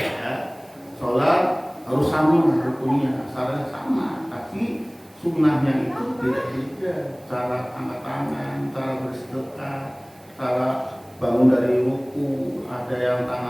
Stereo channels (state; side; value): noise; right; hiss, 29 dB below the sound